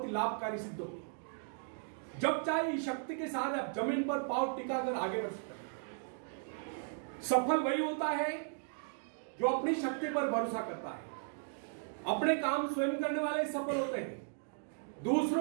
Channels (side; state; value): left; silent; digital silence